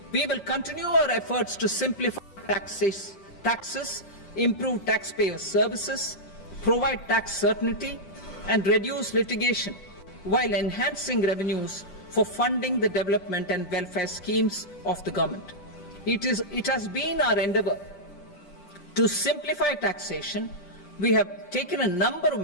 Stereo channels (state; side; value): late; right; 10 ms